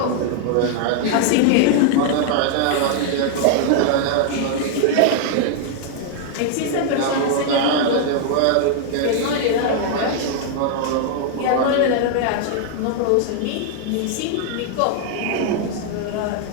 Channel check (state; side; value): different; both; correlation 0.00